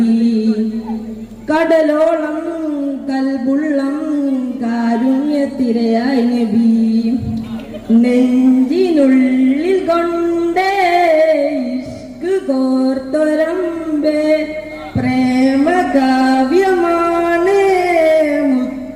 കടലോളം കൽബുള്ളം കാരുണ്യത്തിരയായി നബി. നെഞ്ചിനുള്ളിൽ കൊണ്ടേ ഇഷ്ക് കോർത്തൊരമ്പേ, പ്രേമ കാവ്യമാണ്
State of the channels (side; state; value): both; identical; correlation 1.00